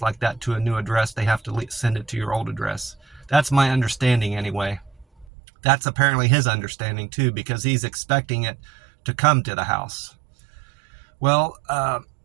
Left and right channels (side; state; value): left; drops out; at 5.2 s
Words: like that to a new address. They have to send it to your old address. That's my understanding anyway. That's apparently his understanding too, because he's expecting it to come to the house. Well,